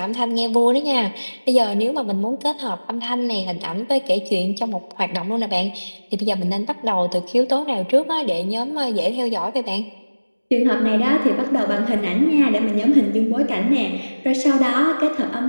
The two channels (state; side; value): inverted; both; correlation -1.00